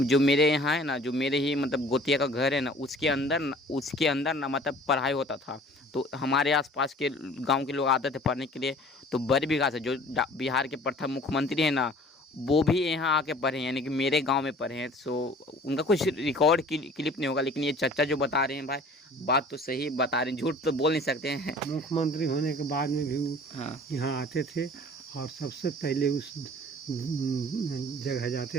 जो मेरे यहाँ है ना, जो मेरे ही मतलब गोतिया का घर है ना, उसके अंदर ना मतलब पढ़ाई होता था। तो हमारे आसपास के गांव के लोग आते थे पढ़ने के लिए। तो बरबीघा से जो बिहार के प्रथम मुख्यमंत्री हैं ना, वो भी यहाँ आके पढ़े हैं, यानी कि मेरे गांव में पढ़े हैं। सो उनका कुछ रिकॉर्ड क्लिप नहीं होगा, लेकिन ये चाचा जो बता रहे हैं भाई, बात तो सही बता रहे हैं, झूठ तो बोल नहीं सकते हैं। मुख्यमंत्री होने के बाद में भी वो हाँ यहाँ आते थे और सबसे पहले उस जगह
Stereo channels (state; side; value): normal; both; correlation 0.49